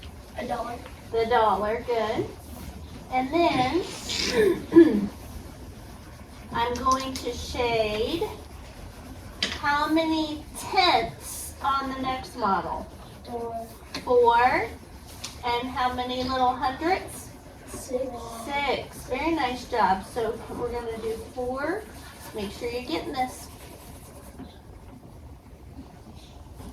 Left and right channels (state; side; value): identical; both; correlation 1.00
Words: $1. The dollar, good. And then I'm going to shade how many tenths on the next model? 4. And how many little hundredths? 6. 6. Very nice job. So we're going to do 4. Make sure you're getting this.